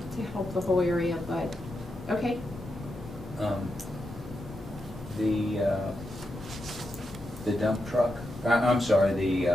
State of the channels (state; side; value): normal; both; correlation 0.86